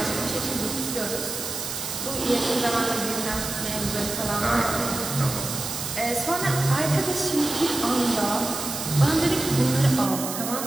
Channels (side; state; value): right; noise; hiss, 5 dB below the sound